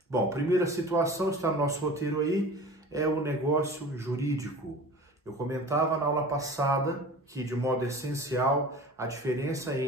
Bom, primeira situação, está no nosso roteiro aí, é o negócio jurídico. Eu comentava na aula passada que, de modo essencial, a diferença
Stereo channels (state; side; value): normal; both; correlation 0.39